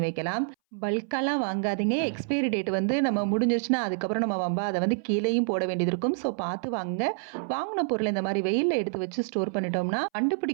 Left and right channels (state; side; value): silent; left; 59 dB below the other